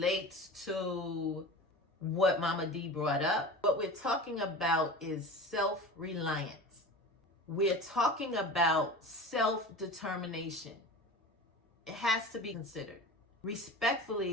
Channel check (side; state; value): both; normal; correlation 0.33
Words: to what Momma Dee brought up, what we're talking about is self-reliance. We're talking about self-determination. It has to be considered.